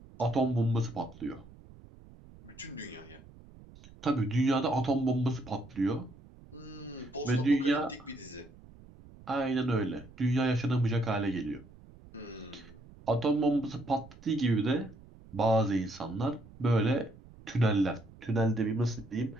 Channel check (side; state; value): right; noise; rumble, 21 dB below the sound